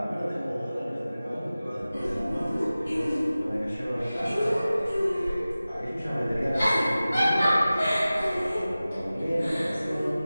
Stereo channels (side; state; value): both; inverted; correlation -0.97